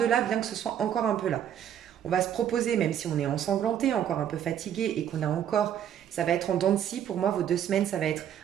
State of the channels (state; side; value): quieter; left; 9.9 dB